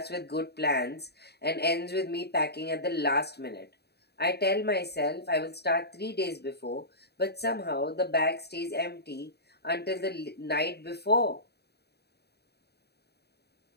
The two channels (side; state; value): right; late; 0.48 ms